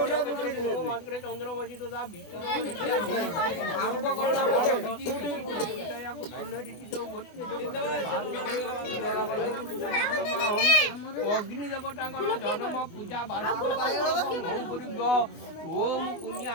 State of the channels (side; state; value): right; late; 24 ms